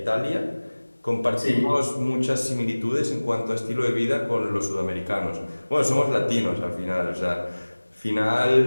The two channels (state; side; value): inverted; both; correlation -1.00